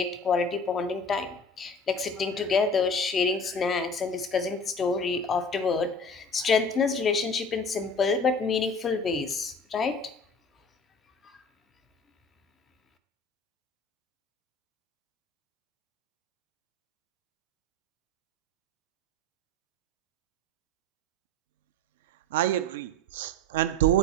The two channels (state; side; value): normal; both; correlation 0.41